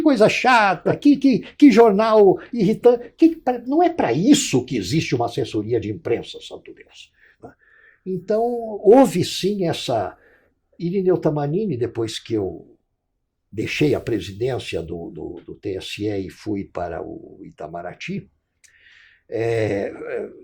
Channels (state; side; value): identical; both; correlation 1.00